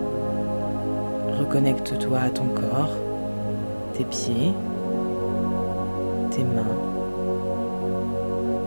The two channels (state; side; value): inverted; both; correlation -1.00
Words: Reconnecte-toi à ton corps, tes pieds, tes mains.